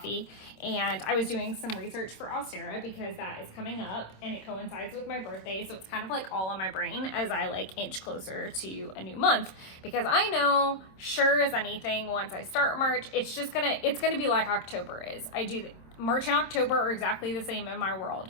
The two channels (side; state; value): right; late; 26 ms